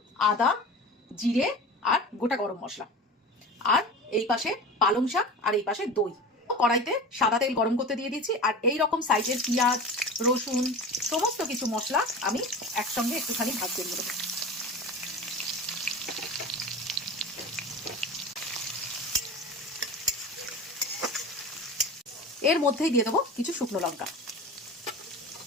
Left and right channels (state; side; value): normal; both; correlation 0.33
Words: আদা, জিরে আর গোটা গরম মশলা। আর এই পাশে পালং শাক, আর এই পাশে দই। কড়াইতে সাদা তেল গরম করতে দিয়ে দিয়েছি। আর এই রকম সাইজের পেঁয়াজ, রসুন, সমস্ত কিছু মশলা আমি একসঙ্গে একটুখানি ভাজতে দিয়ে দেবো। এর মধ্যেই দিয়ে দেবো কিছু শুকনো লঙ্কা।